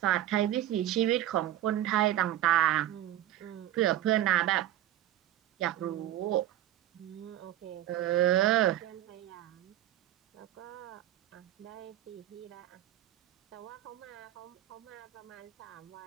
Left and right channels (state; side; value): quieter; left; 13.0 dB